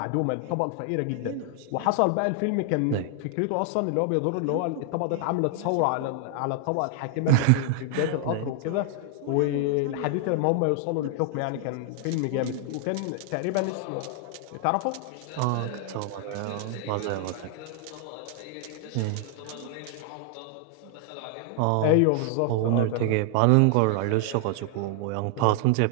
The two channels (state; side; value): different; both; correlation 0.00